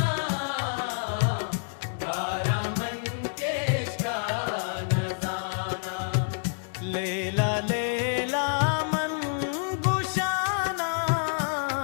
गारा मन केशका नजाना लेला लेला मन गुशाना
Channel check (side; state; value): right; silent; digital silence